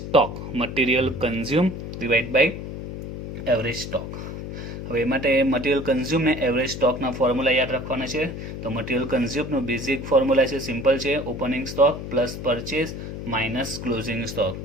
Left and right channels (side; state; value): left; noise; hum, 8 dB below the sound